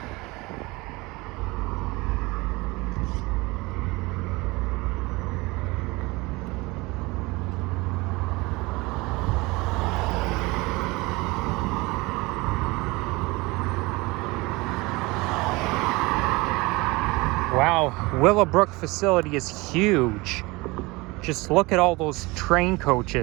Wow, Willowbrook facility is huge. Just look at all those train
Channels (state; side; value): quieter; left; 23.2 dB